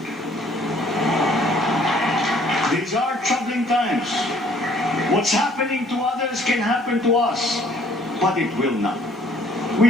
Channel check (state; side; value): normal; both; correlation 0.59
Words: These are troubling times. What's happening to others can happen to us, but it will not. We